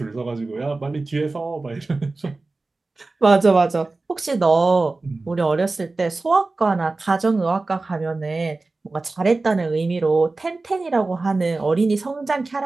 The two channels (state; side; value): quieter; left; 3.4 dB